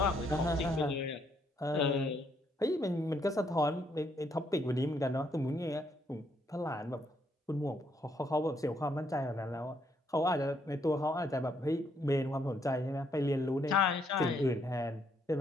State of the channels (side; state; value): both; normal; correlation 0.73